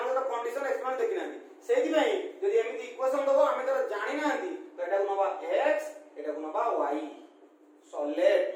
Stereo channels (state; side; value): identical; both; correlation 1.00